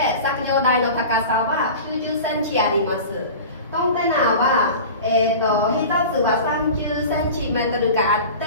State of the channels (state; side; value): inverted; both; correlation -0.35